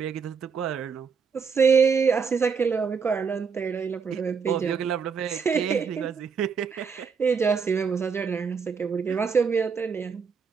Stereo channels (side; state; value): left; quieter; 5.8 dB